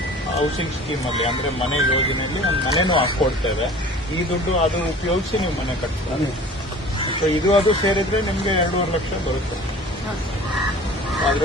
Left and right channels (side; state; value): both; normal; correlation 0.43